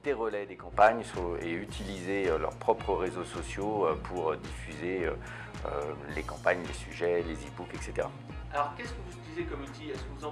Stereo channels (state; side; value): identical; both; correlation 1.00